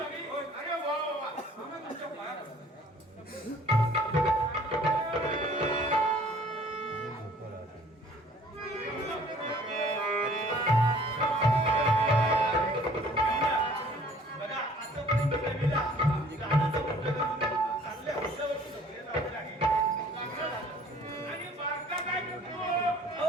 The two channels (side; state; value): both; normal; correlation 0.54